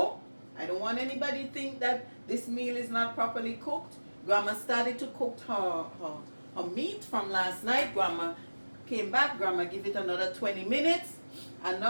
I don't want anybody to think that this meal is not properly cooked. Grandma started to cook her meat from last night. Grandma came back. Grandma give it another 20 minutes. And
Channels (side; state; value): both; inverted; correlation -1.00